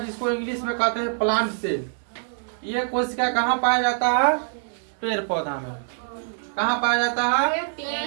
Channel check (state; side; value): silent; left; digital silence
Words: इंग्लिश में कहते हैं प्लांट सेल। ये कोशिका कहाँ पाया जाता है? पेड़ पौधा में। कहाँ पाया जाता है?